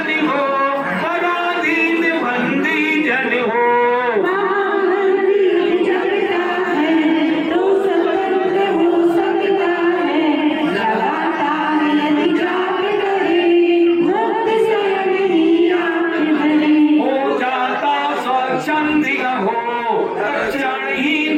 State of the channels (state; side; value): identical; both; correlation 1.00